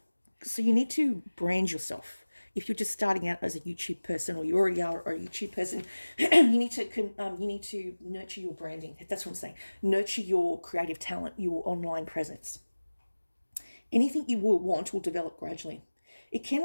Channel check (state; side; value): inverted; both; correlation -1.00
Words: So you need to brand yourself. If you're just starting out as a YouTube person, or you already are a YouTube person, you need to nurture your branding. That's what I'm saying. Nurture your creative talent, your online presence. Anything you will want will develop gradually. It can